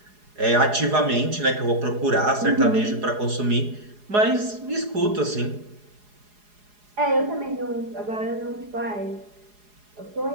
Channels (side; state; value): left; late; 4.8 ms